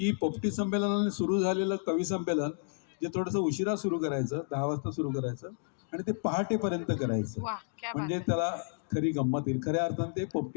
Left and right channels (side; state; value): right; silent; digital silence